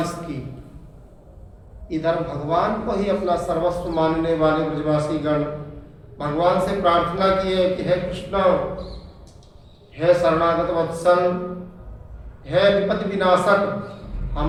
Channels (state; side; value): identical; both; correlation 1.00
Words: की। इधर भगवान को ही अपना सर्वस्व मानने वाले ब्रजवासी गण भगवान से प्रार्थना किए कि हे कृष्ण, हे शरणागत वत्सल, हे विपत्ति विनाशक,